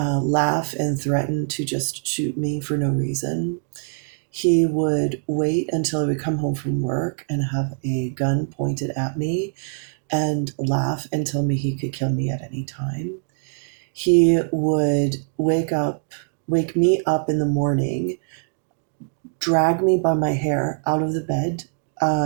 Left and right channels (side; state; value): left; silent; digital silence